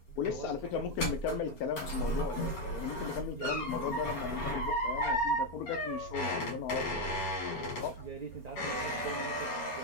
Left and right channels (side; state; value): right; late; 4.4 ms